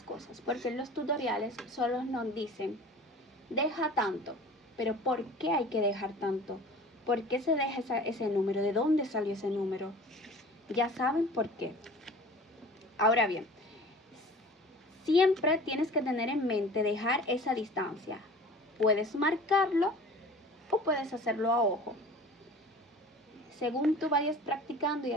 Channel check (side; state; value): both; normal; correlation 0.43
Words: cosas. Porque en los tutoriales solo nos dicen, deja tanto, pero ¿por qué hay que dejar tanto? ¿Por qué se deja ese número? ¿De dónde salió ese número? Ya saben por qué. Ahora bien, siempre tienes que tener en mente dejar esa distancia. Puedes marcarlo o puedes hacerlo a ojo. Según tú vayas practicando y